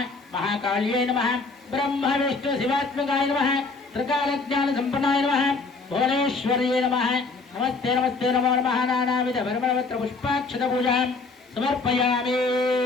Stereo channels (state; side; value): quieter; right; 3.9 dB